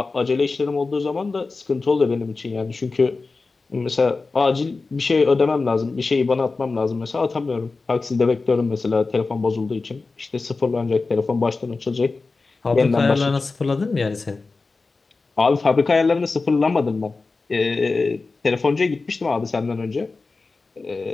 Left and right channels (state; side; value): quieter; right; 3.9 dB